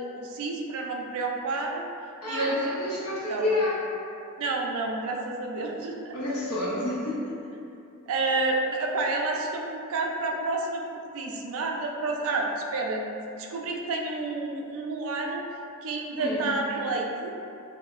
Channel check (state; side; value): normal; both; correlation 0.04